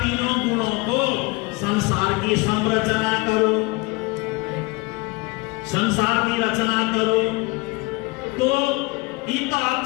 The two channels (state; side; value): quieter; right; 25.2 dB